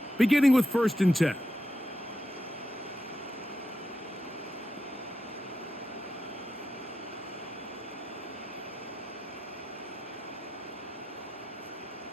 beginning with 1st and 10.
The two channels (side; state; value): both; normal; correlation 0.86